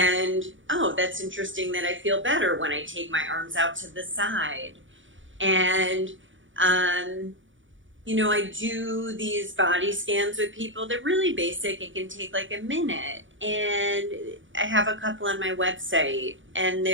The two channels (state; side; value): late; left; 0.56 ms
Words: oh, that's interesting that I feel better when I take my arms out to the side. And, I do these body scans with people. They're really basic. It can take like a minute. And I have a couple on my website, and